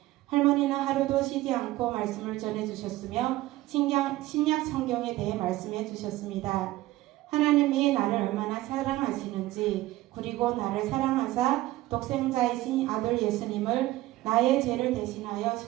할머니는 하루도 쉬지 않고 말씀을 전해주셨으며 신약 성경에 대해 말씀해 주셨습니다. 하나님이 나를 얼마나 사랑하시는지 그리고 나를 사랑하사 독생자이신 아들 예수님을 나의 죄를 대신하여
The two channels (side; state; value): left; quieter; 17.1 dB